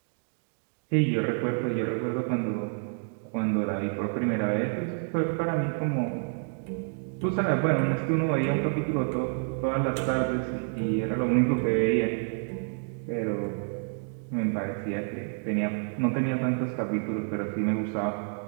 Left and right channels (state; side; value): silent; left; 56 dB below the other